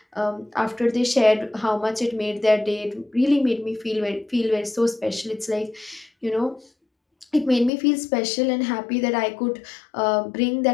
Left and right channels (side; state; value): right; drops out; at 7.7 s